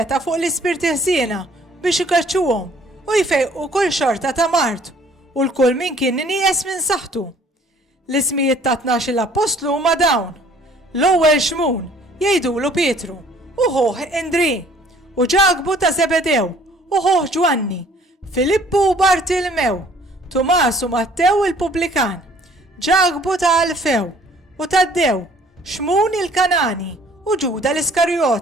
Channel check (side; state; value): both; normal; correlation 0.57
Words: fuq l-ispirti ħsiena biex ikaċċuhom u jfejqu kull xorta ta' mart u l-kull min kien nieqes minn saħħtu. L-ismijiet ta' 12 l-apostlu huma dawn: l-ewwel Xmun jgħidulu Pietru, u ħoħ Indri, u Ġagbu ta' Zebedew, u ħoħ Ġwanni, Filippu u Bartilmew, Tumas u Mattew il-Pubblikan, Ġagbu ta' Alfew u Taddew, Xmun il-Kanani u Ġuda